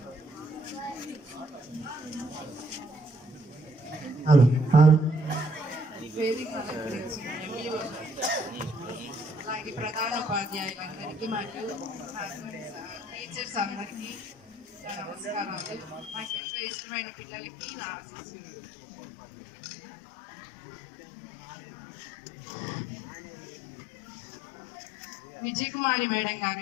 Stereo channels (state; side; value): drops out; right; at 16.4 s